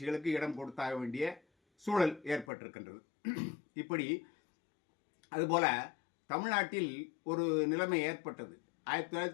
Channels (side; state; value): right; drops out; at 2.5 s